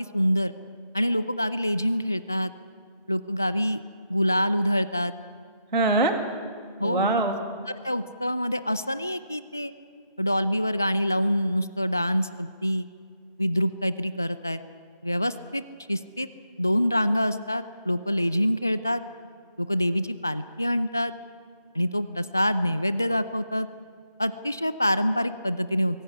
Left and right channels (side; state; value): both; inverted; correlation -0.85